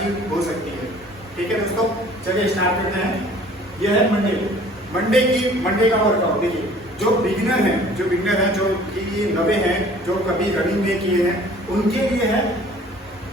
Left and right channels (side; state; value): both; normal; correlation 0.51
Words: हो सकती है। ठीक है दोस्तों, चलिए स्टार्ट करते हैं। ये है मंडे का वर्कआउट। देखिए, जो बिगिनर हैं जो कि नवे हैं, जो कभी रनिंग नहीं किए हैं, उनके लिए है